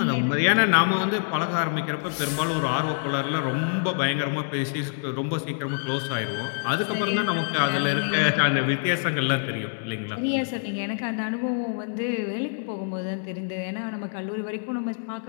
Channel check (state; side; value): silent; right; digital silence